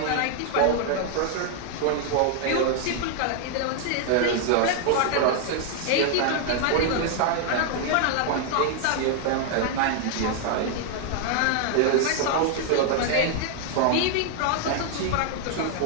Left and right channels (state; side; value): different; both; correlation 0.00